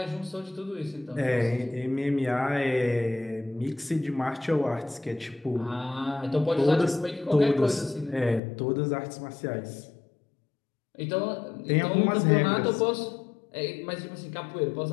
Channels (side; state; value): right; drops out; at 8.4 s